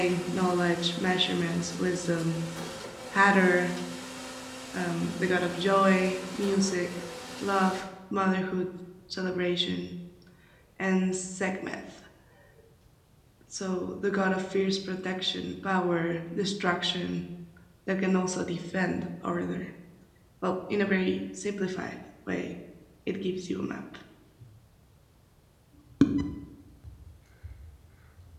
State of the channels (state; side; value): identical; both; correlation 1.00